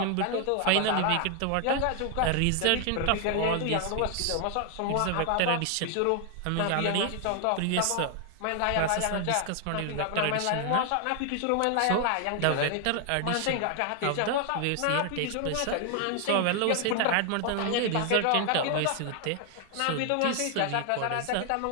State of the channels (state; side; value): different; both; correlation 0.00